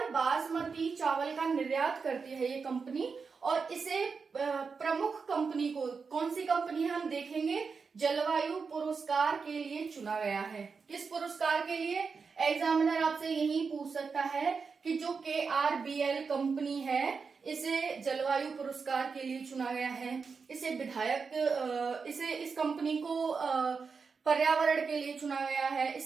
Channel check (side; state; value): left; quieter; 5.2 dB